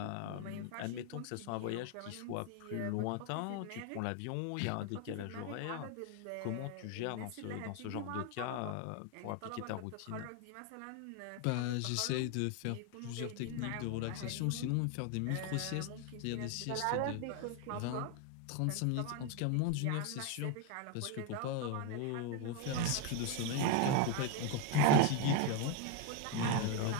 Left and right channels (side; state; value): both; different; correlation 0.01